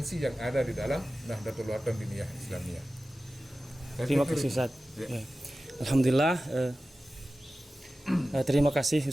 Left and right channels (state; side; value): normal; both; correlation 0.95